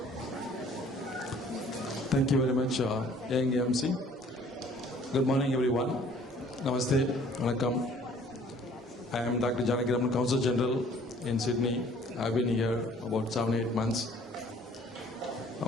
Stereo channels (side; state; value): both; normal; correlation 0.55